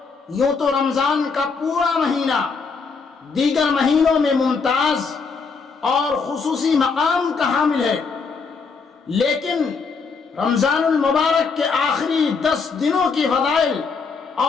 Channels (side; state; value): right; quieter; 5.0 dB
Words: یوں تو رمضان کا پورا مہینہ دیگر مہینوں میں ممتاز اور خصوصی مقام کا حامل ہے، لیکن رمضان المبارک کے آخری 10 دنوں کی فضائل